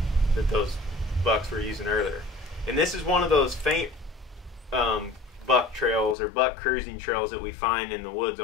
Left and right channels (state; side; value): drops out; right; at 6.2 s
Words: that those bucks were using earlier. And this is one of those faint buck trails or buck cruising trails that we find in the woods